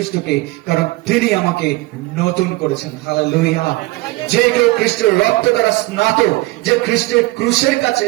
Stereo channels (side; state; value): left; quieter; 21.1 dB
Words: কারণ তিনি আমাকে নতুন করেছেন। হালেলুয়া। যে কেউ খ্রিস্টের রক্ত দ্বারা স্নাত, যে খ্রিস্টের ক্রুশের কাছে